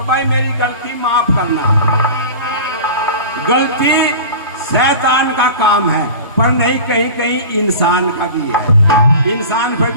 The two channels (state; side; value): inverted; both; correlation -0.35